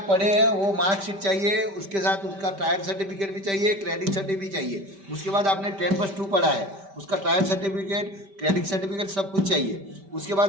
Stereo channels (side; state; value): left; late; 5.1 ms